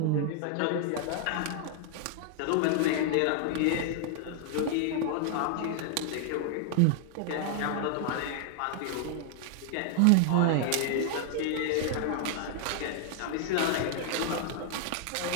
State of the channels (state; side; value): different; both; correlation 0.00